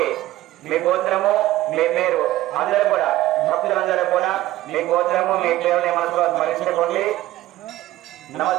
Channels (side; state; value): left; quieter; 15.7 dB